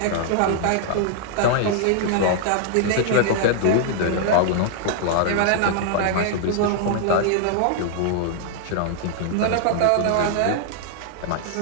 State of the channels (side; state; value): both; different; correlation -0.01